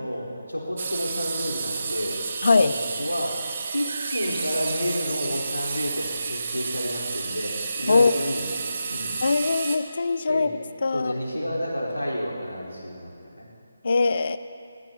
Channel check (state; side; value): inverted; both; correlation -0.90